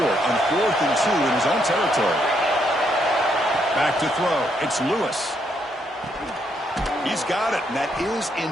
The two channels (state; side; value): normal; both; correlation 0.75